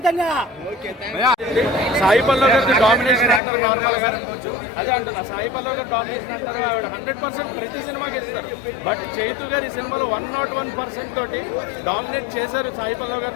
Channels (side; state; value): right; drops out; at 3.4 s